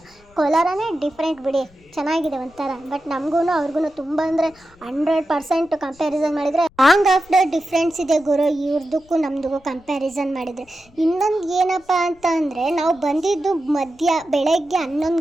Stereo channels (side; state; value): left; noise; rumble, 29 dB below the sound